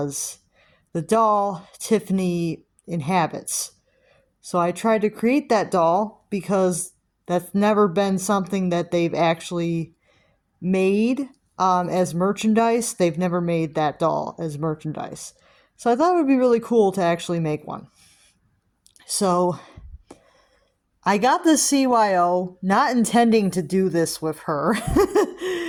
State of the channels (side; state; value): both; identical; correlation 1.00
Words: the doll Tiffany inhabits. So I tried to create that doll because that's never been something that they've actually made as merchandise. They've never made that doll as merchandise. So I thought it would be really cool to actually make one. So I got this CYO not intending to do this with her.